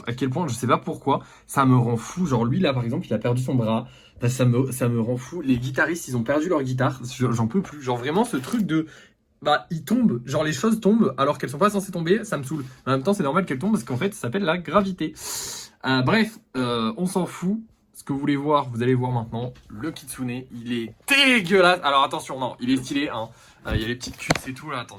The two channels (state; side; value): identical; both; correlation 1.00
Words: à quel point, je sais pas pourquoi, ça me rend fou. Genre lui là par exemple, il a perdu son bras. Bah, ça me rend fou. Les guitaristes, ils ont perdu leur guitare. J'en peux plus. Genre vraiment ce truc de bah ils tombent, genre les choses tombent alors qu'elles sont pas censées tomber, ça me saoule. En même temps, c'est normal qu'elles tombent parce qu'en fait, ça s'appelle la gravité. Bref, on s'en fout. Ce que vous voulez voir, vous allez voir maintenant. Le kitsune, il est dégueulasse. Alors attention, non, il est stylé. Hein. Il y a les petites cuisses et tout là. Attends,